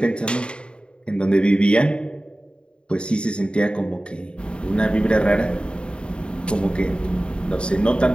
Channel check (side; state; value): right; late; 0.053 ms